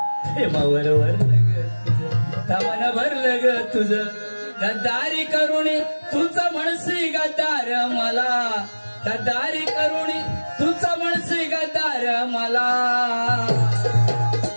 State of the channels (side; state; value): both; inverted; correlation -1.00